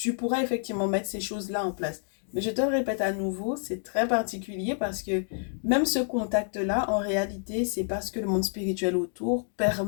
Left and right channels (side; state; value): right; silent; digital silence